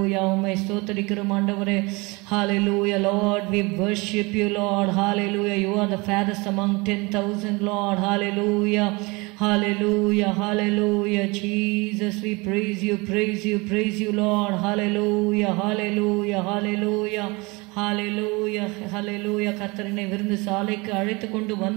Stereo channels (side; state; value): left; quieter; 26.0 dB